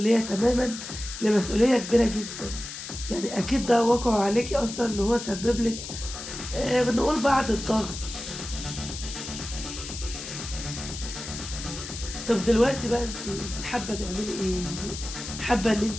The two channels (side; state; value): left; noise; hiss, 9 dB below the sound